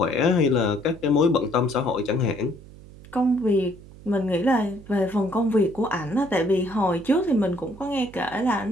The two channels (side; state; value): right; noise; hum, 19 dB below the sound